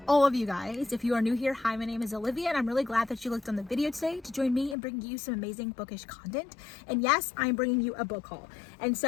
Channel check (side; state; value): right; drops out; at 4.8 s